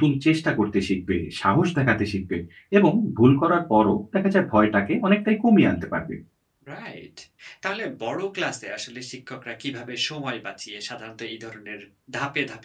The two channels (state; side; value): identical; both; correlation 1.00